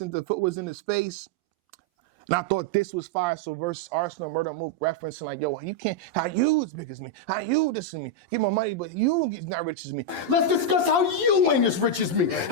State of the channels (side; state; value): left; late; 11 ms